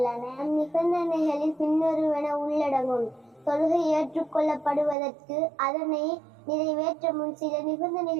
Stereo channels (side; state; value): left; drops out; at 5.0 s